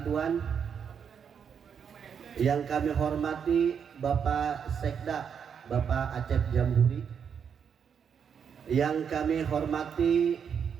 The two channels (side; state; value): left; quieter; 7.3 dB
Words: yang kami hormati Bapak Sekda Bapak Acep Jamburi, yang kami hormati